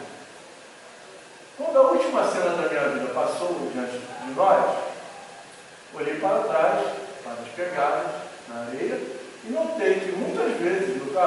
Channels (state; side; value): identical; both; correlation 1.00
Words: Quando a última cena da minha vida passou diante de nós, olhei para trás, para as pegadas na areia, e notei que muitas vezes no